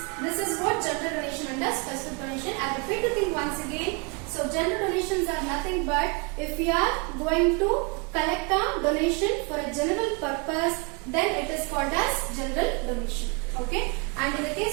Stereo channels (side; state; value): left; quieter; 31.6 dB